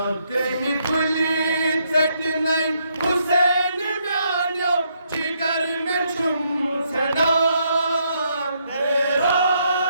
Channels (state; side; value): inverted; both; correlation -0.75